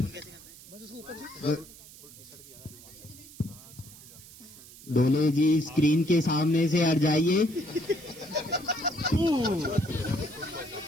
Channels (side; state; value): right; noise; hiss, 19 dB below the sound